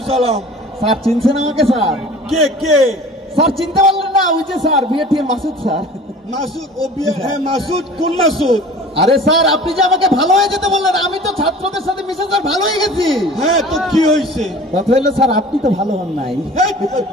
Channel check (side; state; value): both; normal; correlation 0.43